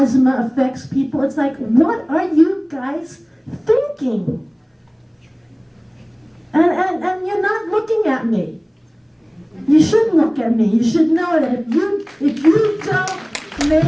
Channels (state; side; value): identical; both; correlation 1.00